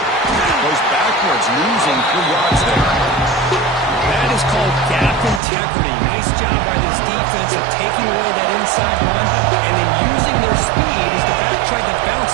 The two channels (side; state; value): left; drops out; at 5.4 s